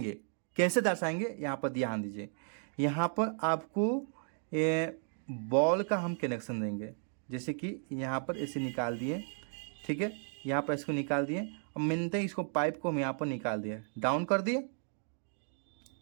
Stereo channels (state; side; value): silent; left; 55 dB below the other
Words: कैसे दर्शाएंगे, यहाँ पर ध्यान दीजिए। यहाँ पर आपको बॉल का हम कनेक्शन देंगे, जैसे कि यहाँ पर ऐसे निकाल दिए, ठीक है, यहाँ पर इसको निकाल दिए। अब मिलते ही इसको पाइप को हम यहाँ पर निकाल दिए, डाउन कर दिए,